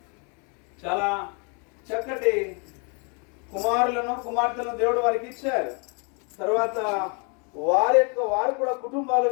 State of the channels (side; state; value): right; quieter; 35.7 dB